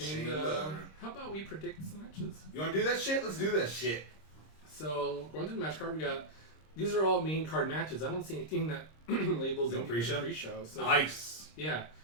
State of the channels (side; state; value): right; late; 26 ms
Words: Chamber. how about we predict some matches? You want to do that shit? Let's do that shit. So going through the match card, we got these are all main card matches. I don't see anything that labels No anything as a pre-show? pre-show. So Nice. yeah,